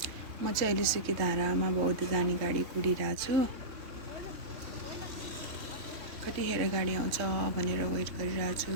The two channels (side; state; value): left; late; 3.6 ms